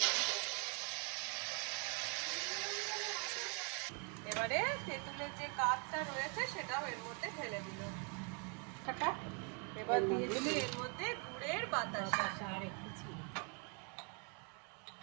এবারে তেঁতুলের যে কাঠটা রয়েছে সেটাও এর মধ্যে ঢেলে দিল। এবার দিয়ে দিল এর মধ্যে গুড়ের বাতাসা আর একটু চিনি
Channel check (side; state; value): left; quieter; 37.2 dB